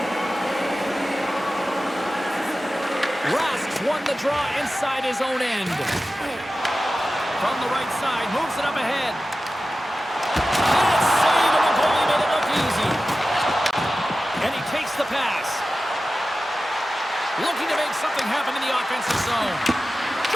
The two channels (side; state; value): both; normal; correlation 0.94